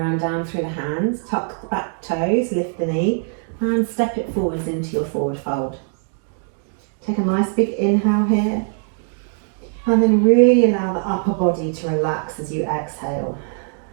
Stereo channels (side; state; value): left; silent; 56 dB below the other